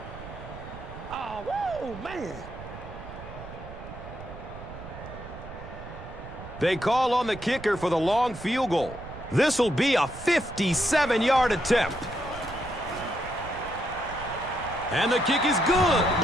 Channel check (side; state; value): right; noise; rumble, 13 dB below the sound